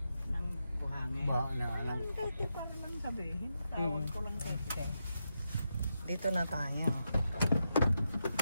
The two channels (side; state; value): both; inverted; correlation -0.86